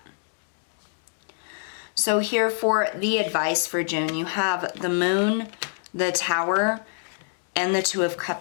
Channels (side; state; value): right; silent; digital silence